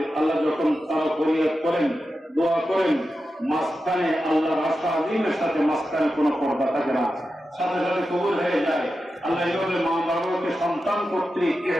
আল্লাহ যখন তারা ফরিয়াদ করেন দোয়া করেন মাঝখানে আল্লাহর আশা আজিমের সাথে মাঝখানে কোনো পর্দা থাকে না সাথে সাথে কবুল হয়ে যায় আল্লাহ এইভাবে মা বাবাকে সন্তান কর্তৃক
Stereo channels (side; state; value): both; normal; correlation 0.91